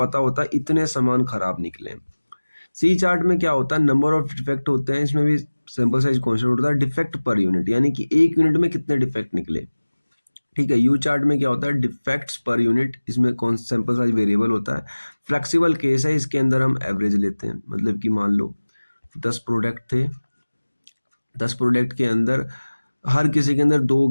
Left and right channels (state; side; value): inverted; both; correlation -1.00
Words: होता है इतने सामान खराब निकले। सी चार्ट में क्या होता है, नंबर ऑफ डिफेक्ट होते हैं, इसमें भी सैंपल साइज कांस्टेंट होता है, डिफेक्ट पर यूनिट, यानी कि एक यूनिट में कितने डिफेक्ट निकले, ठीक है। यू चार्ट में क्या होता है, डिफेक्ट्स पर यूनिट, इसमें कौन सैंपल साइज वेरिएबल होता है। फ्लेक्सिबल केस है, इसके अंदर हम एवरेज लेते हैं, मतलब कि मान लो 10 प्रोडक्ट थे, 10 प्रोडक्ट के अंदर हर किसी के अंदर 2,